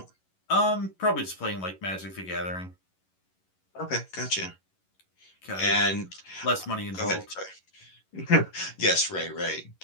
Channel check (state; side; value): late; right; 11 ms